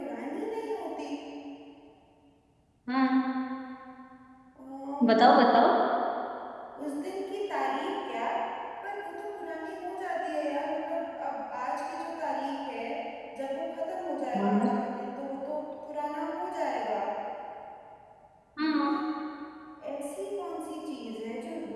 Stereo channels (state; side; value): identical; both; correlation 1.00